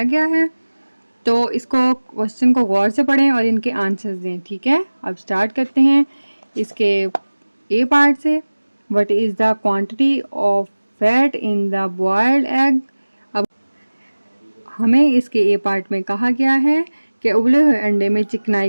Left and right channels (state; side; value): inverted; both; correlation -1.00